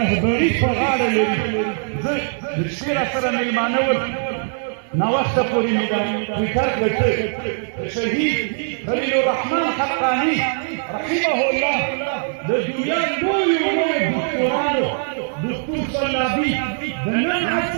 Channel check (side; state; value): left; silent; 60 dB below the other